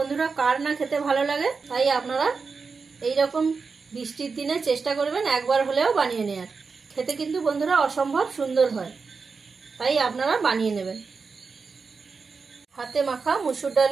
কার না খেতে ভালো লাগে, তাই আপনারা এইরকম বৃষ্টির দিনে চেষ্টা করবেন একবার হলেও বানিয়ে নেওয়ার। খেতে কিন্তু বন্ধুরা অসম্ভব সুন্দর হয়, তাই আপনারা বানিয়ে নেবেন। হাতে মাখা মুসুর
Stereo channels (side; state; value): left; quieter; 4.9 dB